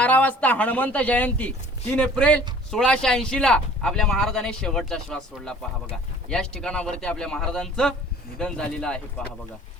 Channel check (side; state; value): both; normal; correlation 0.50